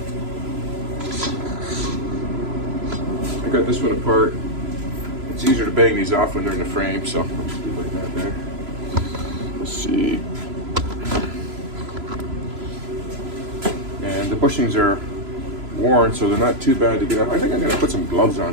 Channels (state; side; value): late; left; 3.0 ms